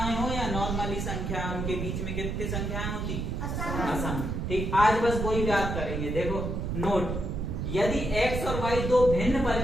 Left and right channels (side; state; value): right; noise; rumble, 2 dB below the sound